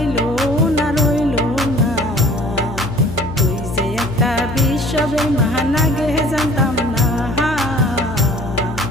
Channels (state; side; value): noise; left; hum, 9 dB below the sound